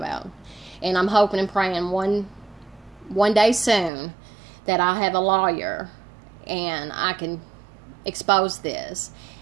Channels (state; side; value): drops out; left; at 3.9 s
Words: And I'm hoping and praying one day soon that I have a lawyer and I can expose this,